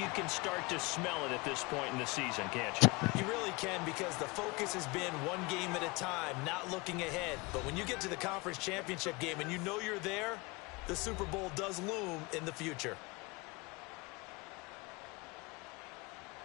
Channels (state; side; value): quieter; right; 25.2 dB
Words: can start to smell it at this point in the season, can't you? You really can, because the focus has been one game at a time, not looking ahead. But when you get to the conference championship game and you know you're there, the Super Bowl does loom in the future.